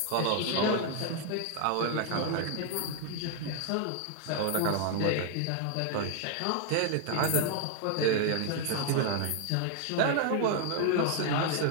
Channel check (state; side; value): different; both; correlation 0.00